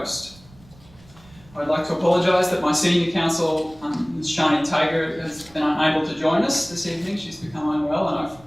I'd like to apologise that my senior counsel, Ms Shani Tager, has been unable to join us this evening. She's become unwell and I've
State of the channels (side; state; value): right; noise; rumble, 25 dB below the sound